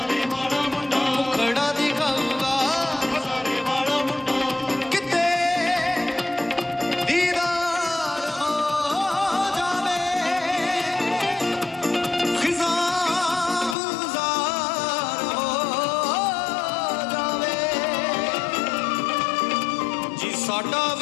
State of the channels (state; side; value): drops out; right; at 13.8 s